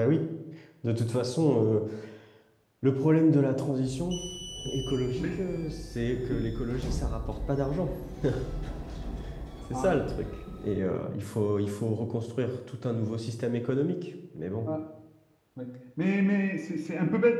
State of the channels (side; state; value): both; identical; correlation 1.00